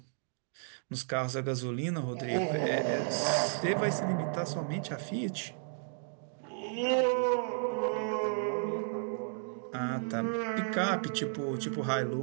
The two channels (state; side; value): silent; left; digital silence